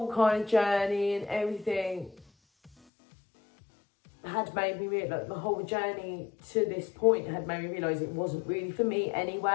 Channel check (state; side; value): drops out; right; at 2.7 s